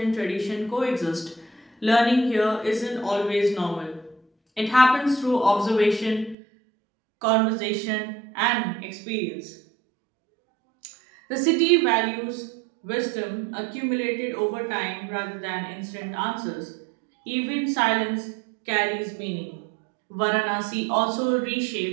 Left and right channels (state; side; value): drops out; left; at 6.4 s